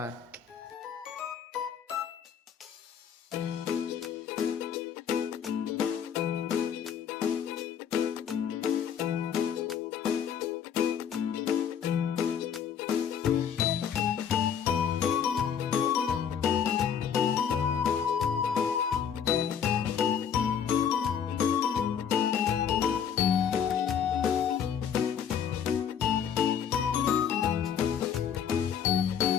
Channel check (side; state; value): right; quieter; 8.0 dB